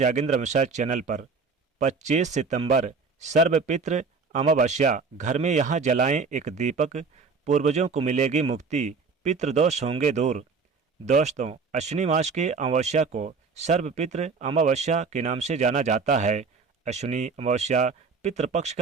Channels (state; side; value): quieter; left; 4.8 dB